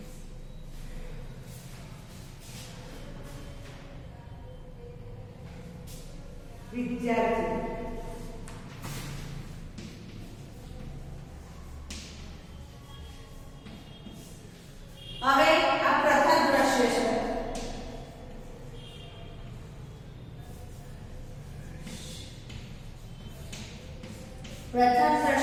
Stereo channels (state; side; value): identical; both; correlation 1.00